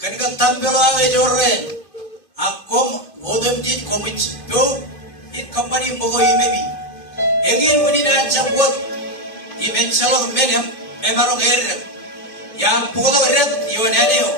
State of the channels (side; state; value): right; late; 2.5 ms